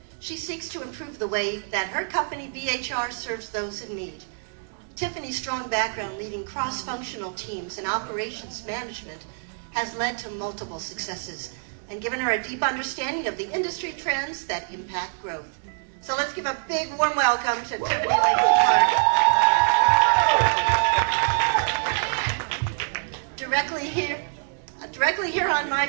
she seeks to improve the way that her company, BHR, serves those in need. Tiffany's strong background leading cross-functional teams and operations management has led to multiple successes and given her a deep understanding of the industry trends that impact growth. So let's give a big warm welcome to Tiffany Lacey Clark. Directly here on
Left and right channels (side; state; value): left; silent; 59 dB below the other